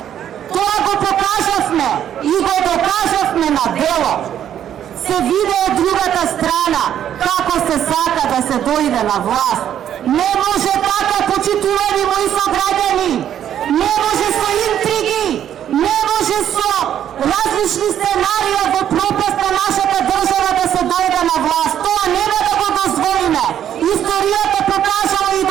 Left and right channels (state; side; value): quieter; left; 10.2 dB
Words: Тоа го покажавме и го докажавме на дело. Се виде од другата страна како се сака да се дојде на власт. Не може така, почитувани мои сограѓани. Не може со интриги, не може со различни сценарија во пропаст на нашата држава да се дојде на власт. Тоа нема да го дозволиме. Историјата покажала и